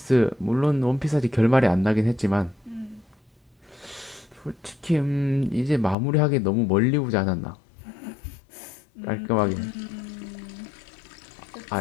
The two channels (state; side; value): drops out; right; at 6.0 s